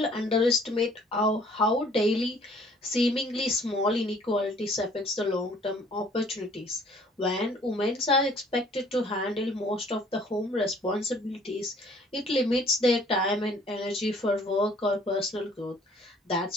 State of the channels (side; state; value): both; normal; correlation 0.57